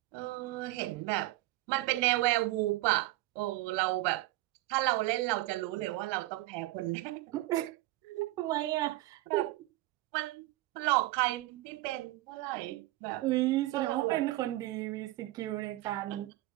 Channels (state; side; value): quieter; left; 18.2 dB